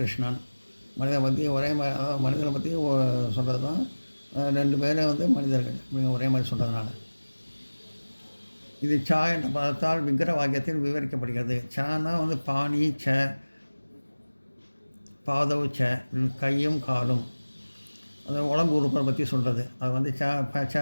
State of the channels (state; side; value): inverted; both; correlation -1.00